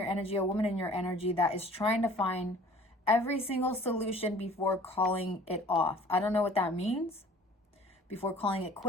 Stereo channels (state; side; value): normal; both; correlation 0.50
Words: energy, a woman in your energy, that is trying to find every single solution before calling it off. I don't know what that means. Before calling it